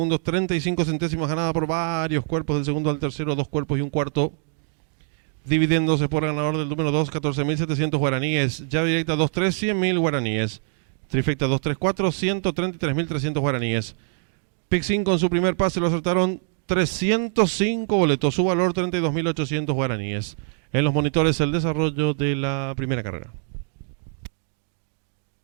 35 centésimos, ganada por varios cuerpos del segundo al tercero, 2 cuerpos y un cuarto. Dividiéndose por ganador del número 2, 14.700 guaraníes. Llave directa 2-3, 100.000 guaraníes. Trifecta 2-3-4, 133.300 guaraníes. Pick 5 con su primer pase lo acertaron 305 boletos, su valor 32.800 guaraníes. En los monitores el desarrollo de la primera carrera.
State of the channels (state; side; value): silent; left; digital silence